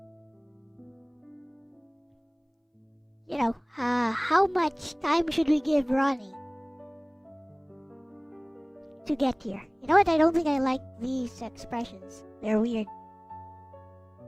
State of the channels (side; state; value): both; identical; correlation 1.00